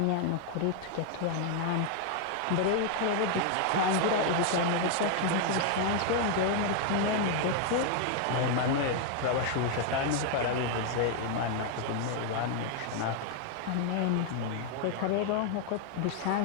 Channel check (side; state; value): both; different; correlation 0.00